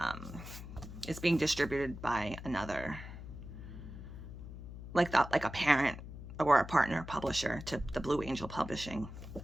being distributed by another, like a parent or a partner publisher to the Blue Angel Publishing.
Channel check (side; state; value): left; noise; hum, 11 dB below the sound